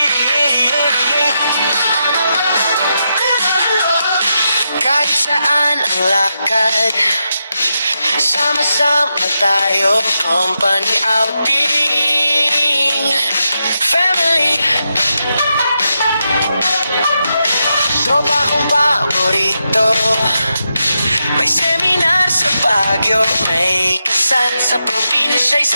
Kahit saan ang lakad, sama-sama tayo, company outing, family. Tropa kong paborito, may seminar sa Baguio, may kasal sa probinsya,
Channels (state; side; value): inverted; both; correlation -0.85